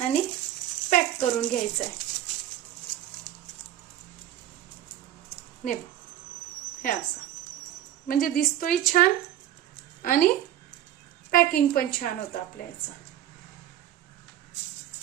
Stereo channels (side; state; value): left; quieter; 12.1 dB